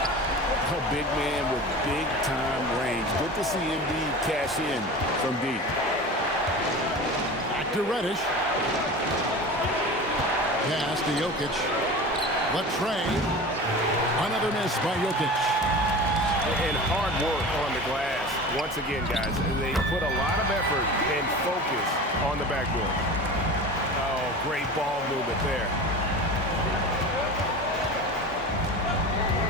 A big man with big-time range. Good to see Embiid cash in from deep. Back to Reddish. Pass to Jokic. Latrey. Another miss by Jokic. And hard work on the glass. Once again, guys, they put a lot of effort and focus on the backboard. Oh, great ball movement there.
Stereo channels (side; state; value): both; normal; correlation 0.33